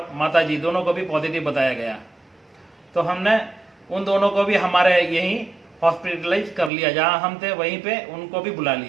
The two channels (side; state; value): left; drops out; at 6.7 s